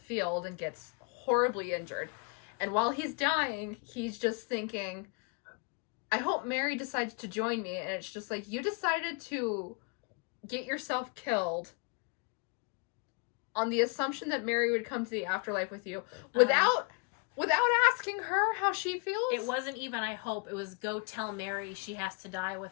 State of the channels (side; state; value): right; quieter; 33.2 dB